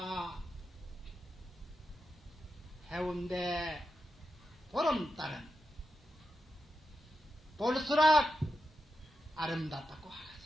해운대 보름달은 볼수록 아름답다고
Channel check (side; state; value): both; normal; correlation 0.89